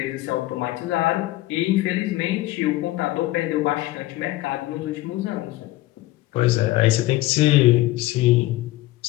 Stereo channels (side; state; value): right; quieter; 17.2 dB